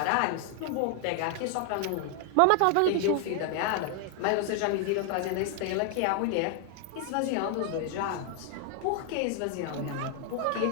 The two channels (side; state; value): both; different; correlation 0.00